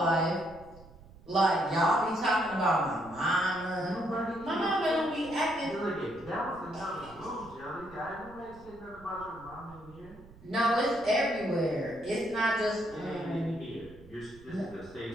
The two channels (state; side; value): noise; right; rumble, 21 dB below the sound